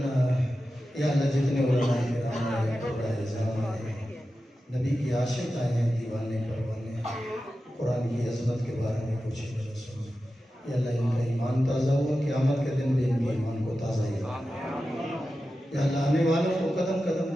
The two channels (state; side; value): normal; both; correlation 0.92